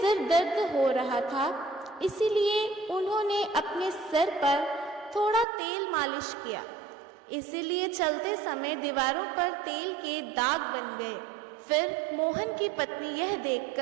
दर्द हो रहा था, इसीलिए उन्होंने अपने सिर पर थोड़ा तेल मालिश किया। इसीलिए चलते समय दीवारों पर तेल के दाग बन गए। फिर मोहन की पत्नी यह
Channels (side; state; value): left; drops out; at 5.5 s